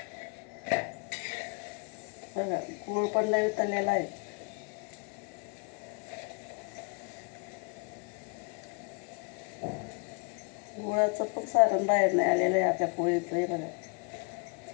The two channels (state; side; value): quieter; right; 34.7 dB